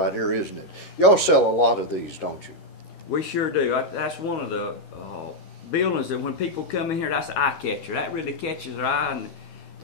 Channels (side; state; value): right; late; 13 ms